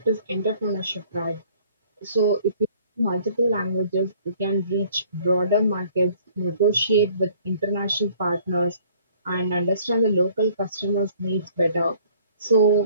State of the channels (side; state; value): both; inverted; correlation -0.57